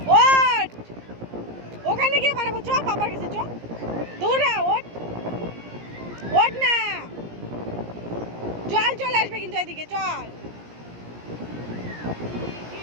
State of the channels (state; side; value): late; left; 17 ms